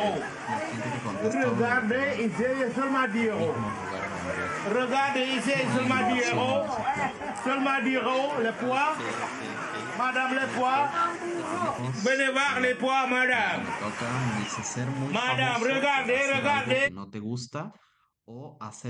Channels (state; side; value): identical; both; correlation 1.00